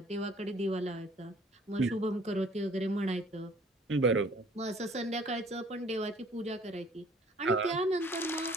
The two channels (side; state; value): both; normal; correlation 0.55